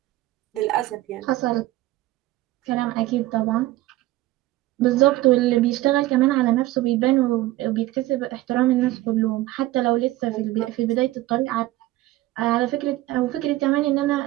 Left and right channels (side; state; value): left; quieter; 17.1 dB